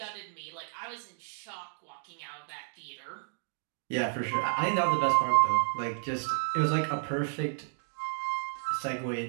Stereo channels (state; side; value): silent; left; digital silence